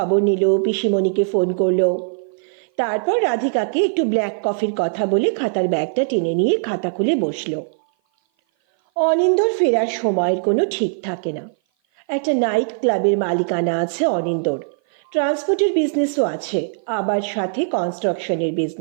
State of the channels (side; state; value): left; silent; 56 dB below the other